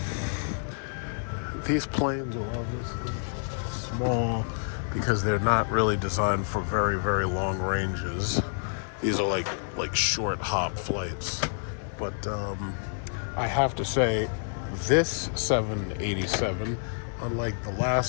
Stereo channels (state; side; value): silent; right; digital silence